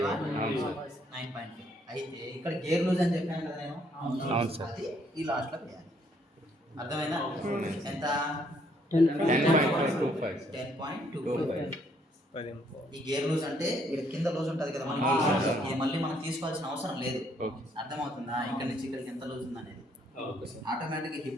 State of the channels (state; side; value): normal; both; correlation 0.68